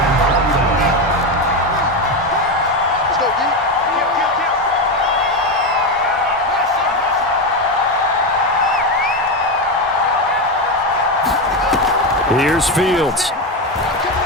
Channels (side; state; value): both; normal; correlation 0.12